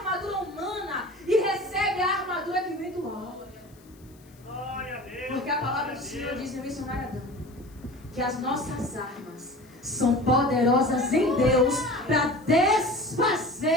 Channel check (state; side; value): noise; left; hiss, 29 dB below the sound